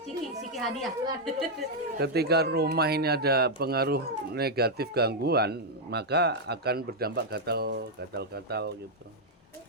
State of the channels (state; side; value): normal; both; correlation -0.02